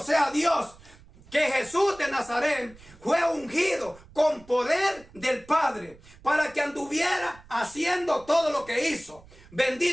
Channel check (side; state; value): right; noise; rumble, 24 dB below the sound